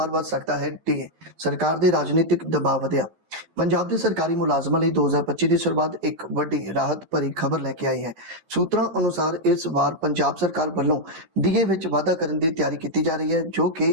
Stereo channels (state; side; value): late; left; 12 ms